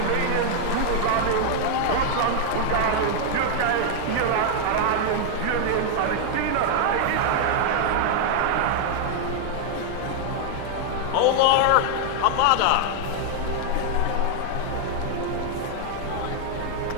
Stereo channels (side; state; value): both; different; correlation 0.00